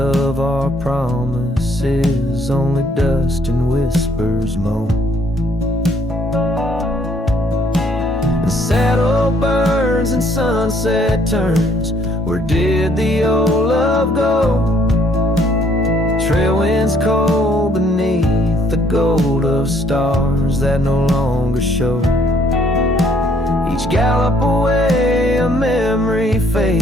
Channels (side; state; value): both; normal; correlation 0.65